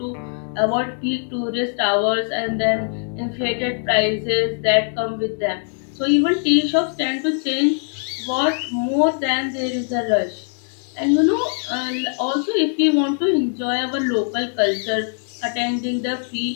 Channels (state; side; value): silent; right; 57 dB below the other